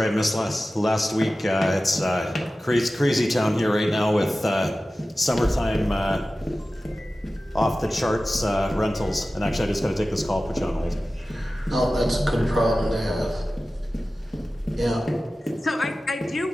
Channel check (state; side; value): normal; both; correlation 0.95